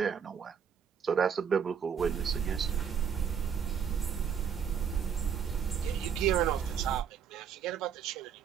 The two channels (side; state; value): left; quieter; 7.6 dB